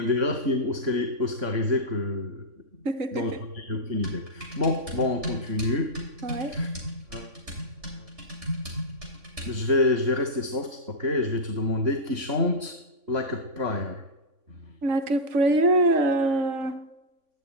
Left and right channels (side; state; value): left; late; 3.5 ms